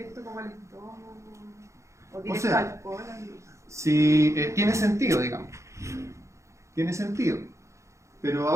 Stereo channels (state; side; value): late; left; 0.14 ms